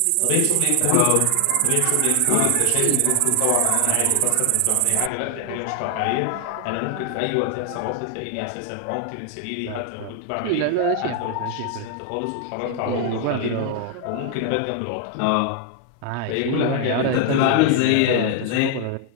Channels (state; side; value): different; both; correlation 0.00